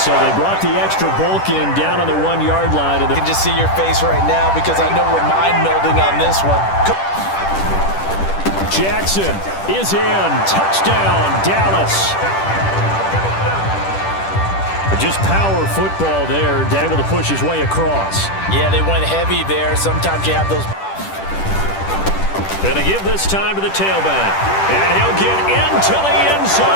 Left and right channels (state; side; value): late; right; 10 ms